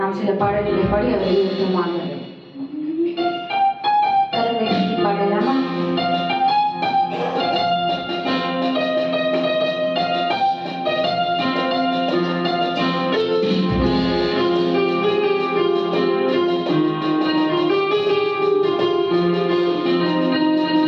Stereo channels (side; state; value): both; identical; correlation 1.00